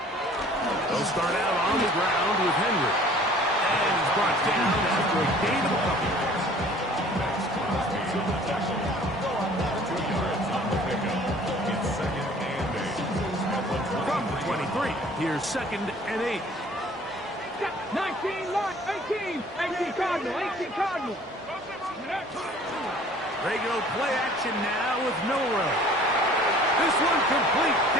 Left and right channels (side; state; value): both; normal; correlation 0.51